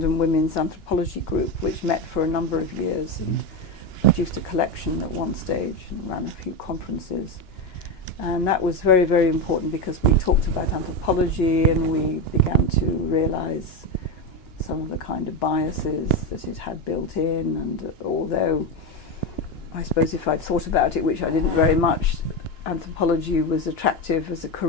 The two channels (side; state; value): right; late; 2.9 ms